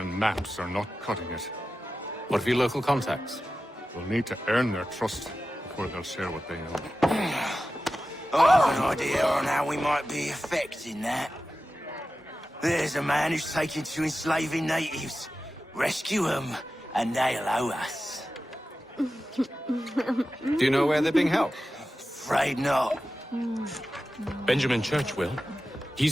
maps are not cutting it. What of your local contacts? We'll need to earn their trust before they'll share what they know. I have an idea on how we might be affecting that. There's a man who's taken to enslaving natives. Rescue them, and they'll owe us. Do you know where they're being held? Afraid not. Benjamin Churchwill.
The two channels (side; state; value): both; normal; correlation 0.93